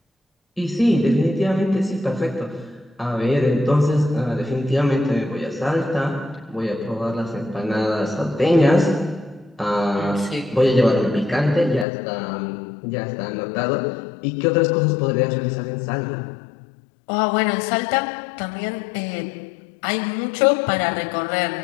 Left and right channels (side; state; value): right; drops out; at 11.9 s